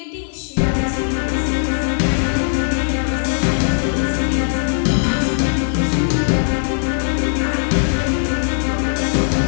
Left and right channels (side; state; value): right; silent; 61 dB below the other